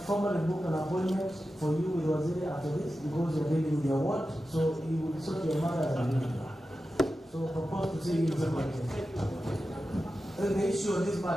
formally booked an appointment for you with Waziri after this because you're dealing with your ward, so you will sort your matter as an individual. So propose to see you in December. The issue of this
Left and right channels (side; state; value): both; normal; correlation 0.92